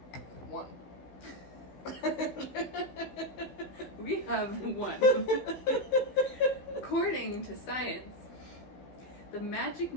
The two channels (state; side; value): late; right; 16 ms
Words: One. We have one. According to science, the magic